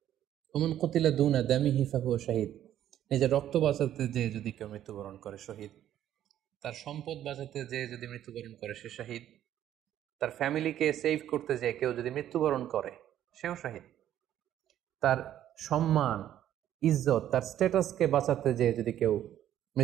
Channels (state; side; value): quieter; left; 11.5 dB